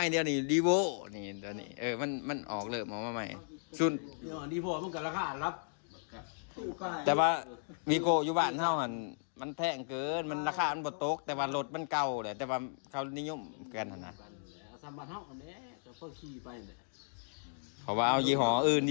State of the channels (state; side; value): silent; right; digital silence